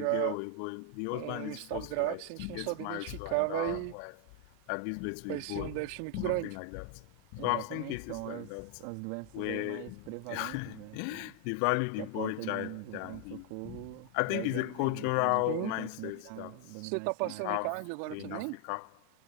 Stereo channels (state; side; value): different; both; correlation 0.00